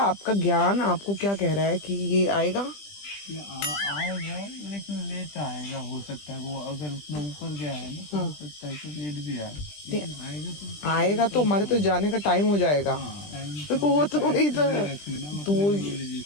आपका ज्ञान आपको क्या कह रहा है कि ये आएगा? आएगा, लेकिन लेट आएगा। हो सकता है वो अगर उतना ऊपर गया है ना, तो हो सकता है कि लेट भी आए। लेकिन आएगा तो हमारे तो जाने का टाइम हो जाएगा। तो वो तो वही तो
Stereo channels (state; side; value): late; right; 20 ms